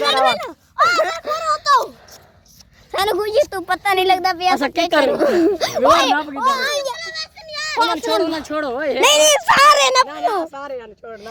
तो सानू खुशी तू पता नहीं लगता पे ऐसा क्या कर विवर नाप किदा ਉਹਨਾਂ ਛੋੜੋ ਓਏ नहीं नहीं सारे ना ਨਾ ਸਾਰੇ ਹਨ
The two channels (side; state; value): both; identical; correlation 1.00